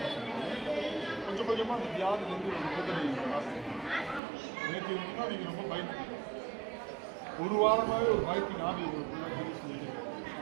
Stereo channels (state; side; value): drops out; left; at 4.2 s